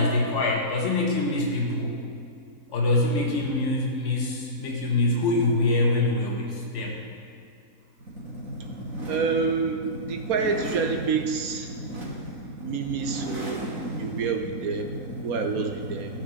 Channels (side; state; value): left; late; 4.3 ms